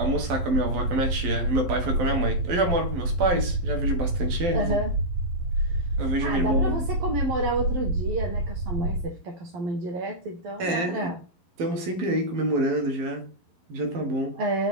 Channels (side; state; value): left; late; 12 ms